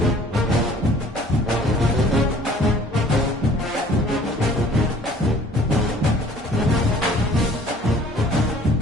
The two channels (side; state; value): both; normal; correlation 0.53